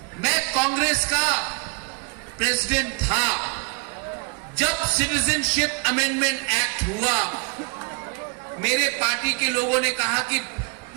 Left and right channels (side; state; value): left; quieter; 32.3 dB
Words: मैं कांग्रेस का प्रेसिडेंट था जब सिटीजनशिप अमेंडमेंट एक्ट हुआ। मेरे पार्टी के लोगों ने कहा कि